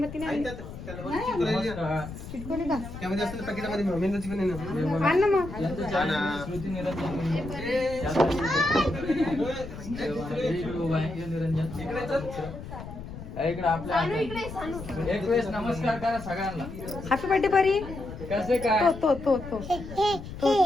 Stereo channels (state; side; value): noise; left; rumble, 11 dB below the sound